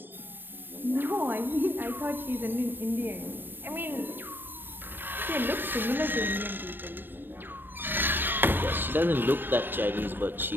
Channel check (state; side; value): late; left; 0.095 ms